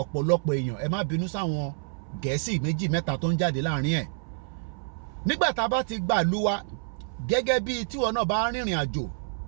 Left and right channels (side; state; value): left; silent; 60 dB below the other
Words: ọ̀pọ̀lọpọ̀ èèyàn ẹ má bínú sáwọn Gẹ̀ẹ́sì méjì mẹ́ta tó ń jáde láàrin ẹ̀. Nígbà tá a bá ti gbà lú wa gẹ́gẹ́ bí tíwọ náà bá rìnrìn àjò